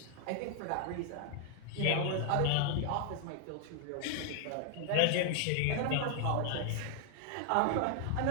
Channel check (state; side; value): different; both; correlation 0.00